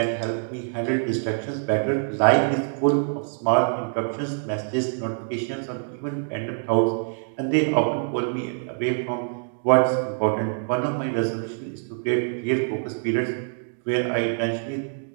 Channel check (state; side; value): silent; left; digital silence